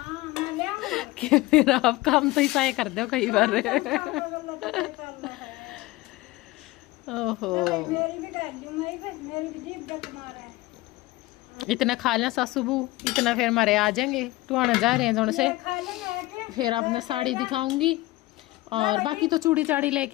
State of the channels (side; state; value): right; quieter; 19.5 dB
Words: कि फिर आप काम तो ऐसा ही कर दो कई बार। ओहो इतना खा लें सासू बू, इतना फिर हमारे आ जाएंगे, तो आने जा रहे हैं जोन से, फिर आपने साड़ी दिखाऊंगी, और बाकी तो चूड़ी चाड़ी